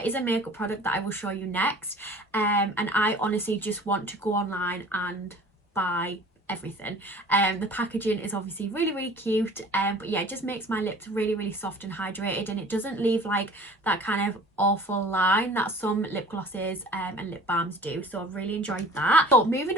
is a makeup product that I will show you next, and I honestly just want to go online and buy everything. The packaging is obviously really, really cute, but yeah, it just makes my lips really, really soft and hydrated, and it doesn't leave like that kind of awful line that some lip glosses and lip balms do. So I've really enjoyed that. So moving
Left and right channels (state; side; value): normal; both; correlation 0.45